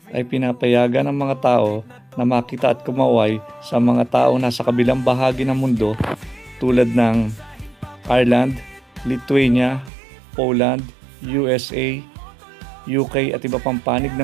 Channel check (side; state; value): left; drops out; at 9.9 s